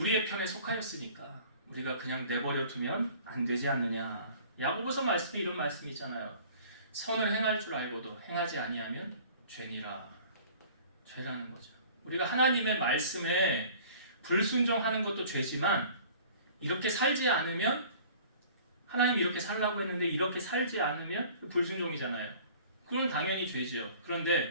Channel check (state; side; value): inverted; both; correlation -0.48